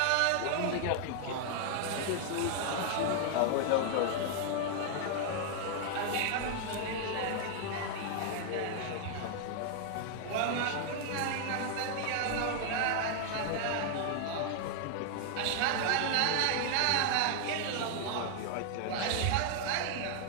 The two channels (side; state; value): both; different; correlation 0.00